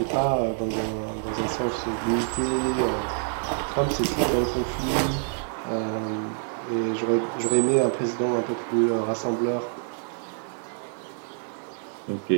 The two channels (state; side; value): silent; left; digital silence